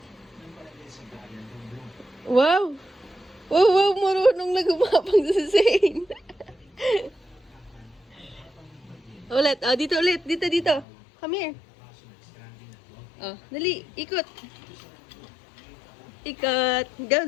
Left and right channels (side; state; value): right; drops out; at 10.9 s